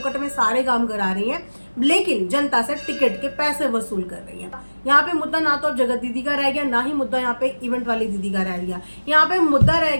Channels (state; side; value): inverted; both; correlation -1.00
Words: में सारे काम करा रही हैं, लेकिन जनता से टिकट के पैसे वसूल कर रही हैं। यहाँ पे मुद्दा ना तो जगत दीदी का रह गया, ना ही मुद्दा यहाँ पे इवेंट वाली दीदी का रह गया। यहाँ पे मुद्दा रह